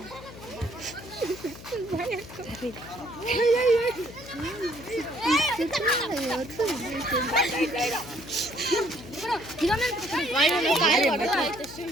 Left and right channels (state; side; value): noise; left; hum, 16 dB below the sound